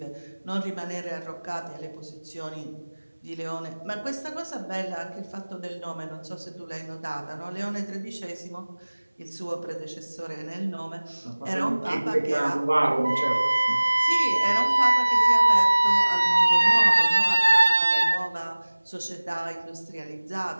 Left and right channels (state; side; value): inverted; both; correlation -1.00